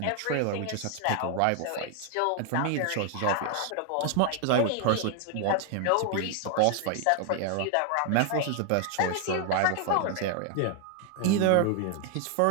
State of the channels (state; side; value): different; both; correlation 0.00